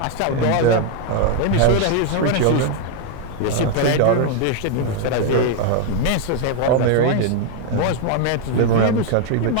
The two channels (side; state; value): both; different; correlation 0.01